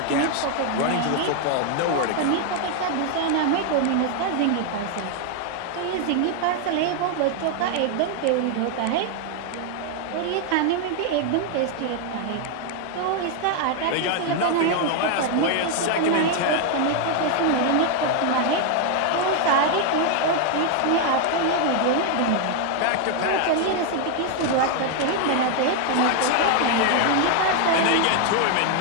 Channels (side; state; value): both; different; correlation 0.00